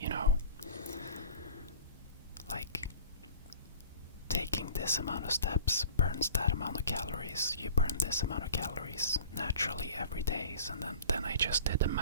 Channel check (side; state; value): both; inverted; correlation -0.43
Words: like taking this amount of steps burns that amount of calories. You burn this amount of calories naturally every day. And then I just did the